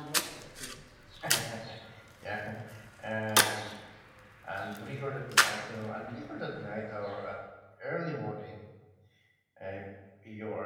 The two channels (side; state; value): both; identical; correlation 1.00